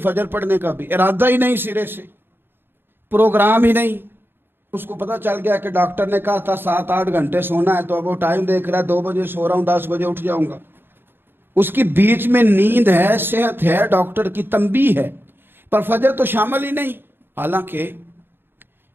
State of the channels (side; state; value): left; late; 0.10 ms